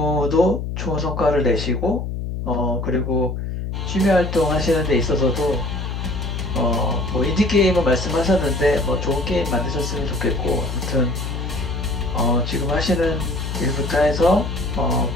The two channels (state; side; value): noise; left; hum, 4 dB below the sound